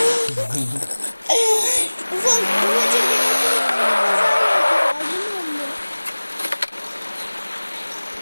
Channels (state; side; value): inverted; both; correlation -1.00